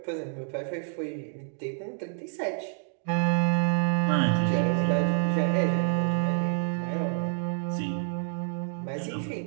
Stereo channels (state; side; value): silent; left; 59 dB below the other